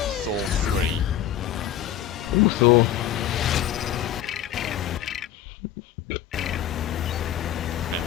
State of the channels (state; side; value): quieter; right; 10.9 dB